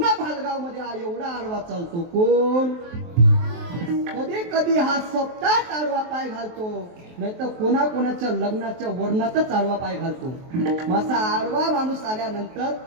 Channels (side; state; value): left; late; 23 ms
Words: भालगाव मध्ये हा एवढा आडवा चालतो. कोण? कधी कधी हा सप्ताहात आडवा पाय घालतो, नाही तर कोणाच्या लग्नाच्या वर्णातच आडवा पाय घालतो. असा आडवा माणूस आल्यानंतर